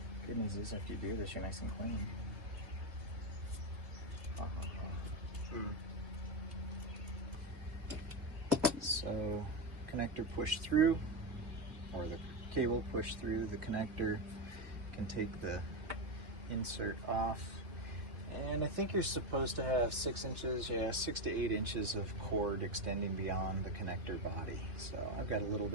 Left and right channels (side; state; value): left; late; 2.7 ms